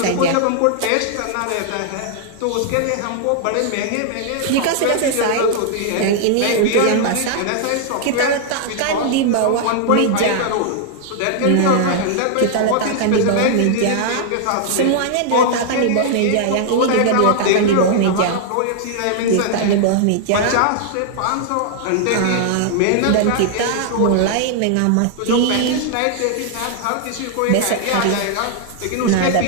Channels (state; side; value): different; both; correlation 0.00